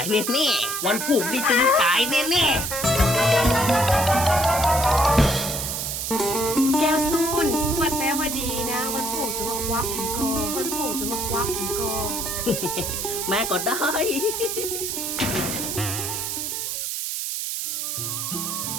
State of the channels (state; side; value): noise; right; hiss, 3 dB below the sound